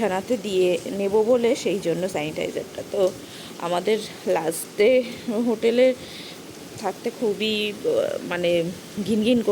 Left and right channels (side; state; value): both; identical; correlation 1.00